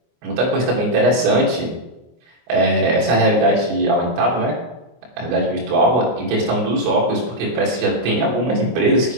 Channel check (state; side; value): late; left; 24 ms